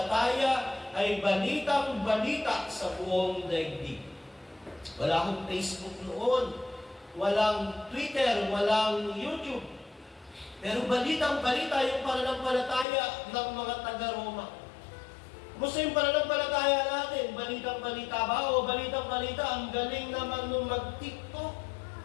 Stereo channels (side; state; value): right; drops out; at 12.9 s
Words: ay balitang-balita sa buong daigdig. Wala akong Facebook noon, walang Twitter, walang YouTube. Pero balitang-balita yung pananampalataya ng mga taga-Roma. Kumusta yung pananampalataya natin? Balitang-balita ba? O balitang-balita, ang galing naman nung mag-TikTok.